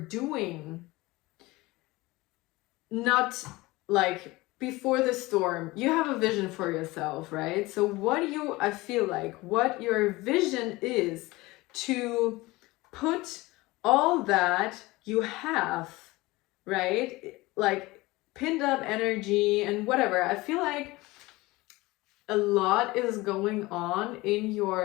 not like before the storm, you have a vision for yourself, right? So I feel like what your vision is to put all that you have, right? Like pinned up energy and whatever. I feel like a lot is going on in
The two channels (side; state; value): right; quieter; 20.9 dB